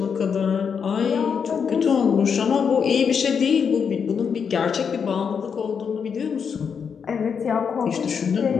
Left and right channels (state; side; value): quieter; right; 6.6 dB